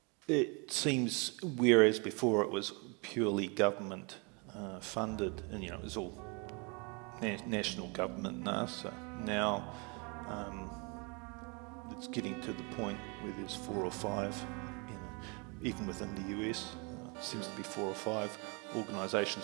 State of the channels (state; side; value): quieter; left; 31.9 dB